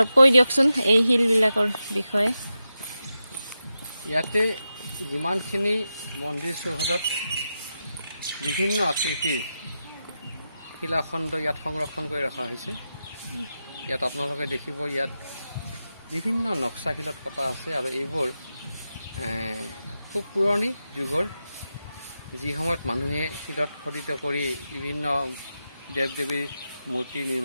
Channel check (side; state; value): both; inverted; correlation -0.89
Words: কৈ দিয়কচোন এই শিলবিলাকৰ বিষয়ে। ইয়াতে যিমানখিনি মন্দিৰ চৌহদত বিভিন্ন আকৃতিৰ শিলাখণ্ড ইয়াত সংৰক্ষণ কৰি ৰখা হৈছে। ইয়াত আপোনালোকে দেখিব ইয়াত বিভিন্ন নক্সা শিলত কটা আছে আৰু এইবোৰ খুব পুৰণি যুগৰ, যি সময়ত মানুহে শিলত খোদিত কৰি বিভিন্ন দেৱ দেৱীৰ মূৰ্তি